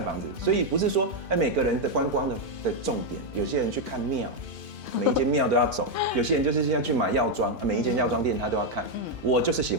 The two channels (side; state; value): left; late; 2.5 ms